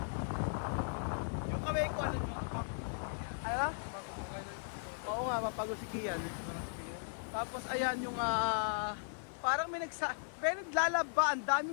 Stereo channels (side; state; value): right; silent; digital silence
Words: Yung kamay ko ano? Ano na? Oo nga, mapagod si Kian. Tapos ayan yung parang may naglalaba, ang